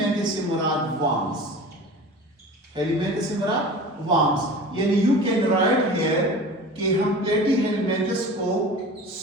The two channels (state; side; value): normal; both; correlation 0.37